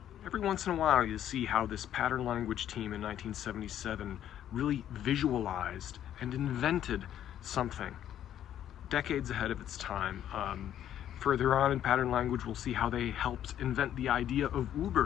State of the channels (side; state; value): right; quieter; 10.9 dB